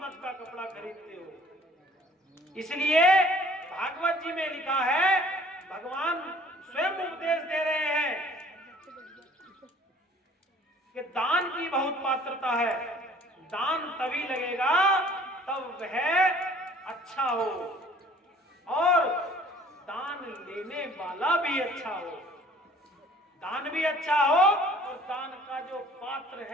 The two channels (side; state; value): both; normal; correlation 0.54